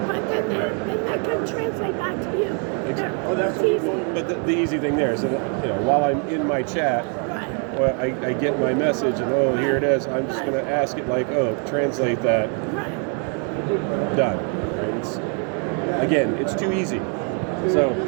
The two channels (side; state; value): left; quieter; 39.8 dB